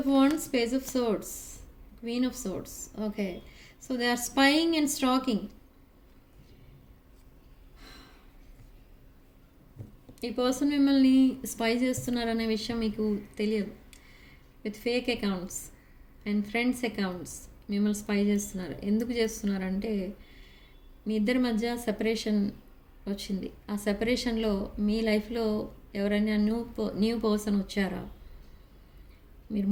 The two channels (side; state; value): both; identical; correlation 1.00